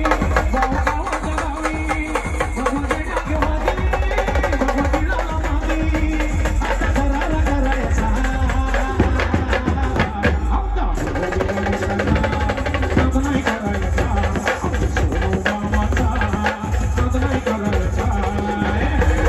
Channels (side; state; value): both; identical; correlation 1.00